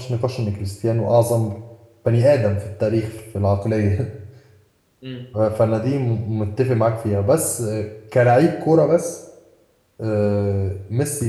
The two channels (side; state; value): both; identical; correlation 1.00